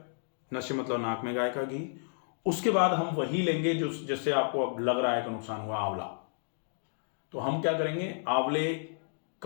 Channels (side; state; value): right; silent; digital silence